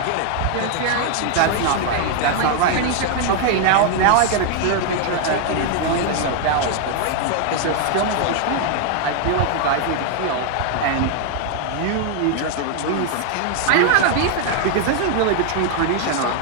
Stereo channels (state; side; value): different; both; correlation 0.00